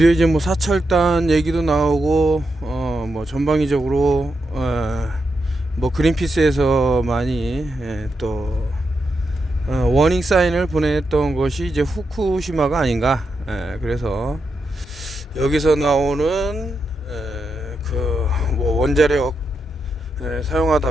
이제 뭐 사찰단 얘기도 나오고 뭐 전방위적으로 뭐 그린피스에서 많이 또 워닝 사인을 보냈던 것이 이제 후쿠시마가 아닌가. 그래서 여기서 나오는 그 뭐 원자력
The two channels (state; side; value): normal; both; correlation 0.85